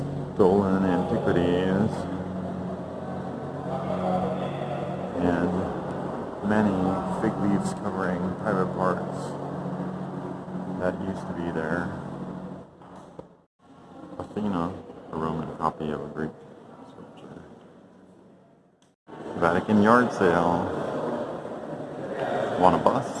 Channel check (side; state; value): both; identical; correlation 1.00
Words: Stolen antiquities. And many fig leaves covering private parts that used to be there. Athena, a Roman copy of a Greek sculpture. Vatican yard sale. Want a